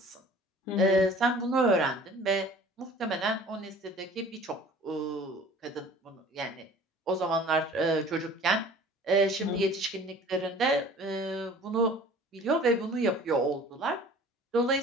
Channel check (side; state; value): both; normal; correlation 0.46